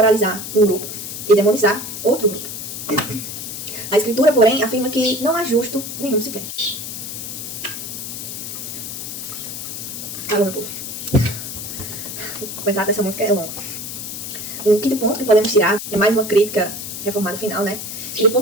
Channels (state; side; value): noise; left; hiss, 7 dB below the sound